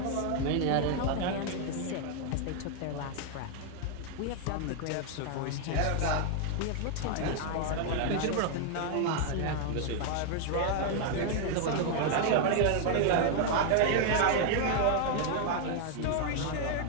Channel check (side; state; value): both; different; correlation 0.00